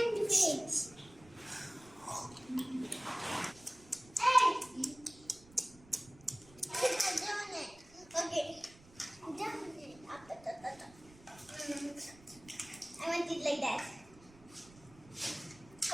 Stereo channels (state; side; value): noise; right; rumble, 23 dB below the sound